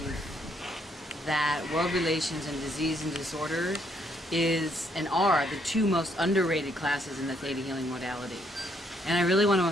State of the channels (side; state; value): both; normal; correlation 0.71